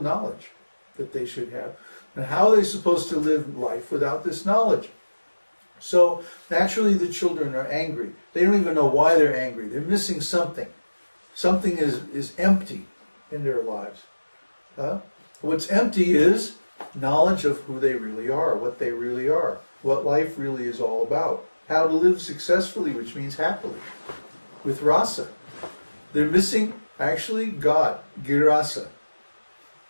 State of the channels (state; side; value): inverted; both; correlation -1.00